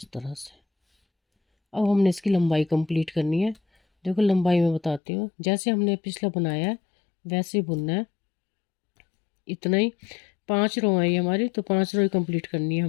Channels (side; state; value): right; drops out; at 5.0 s